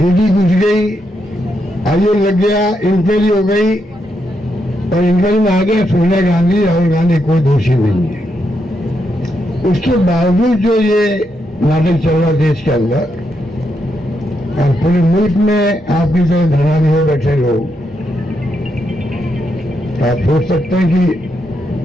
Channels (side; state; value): both; normal; correlation 0.81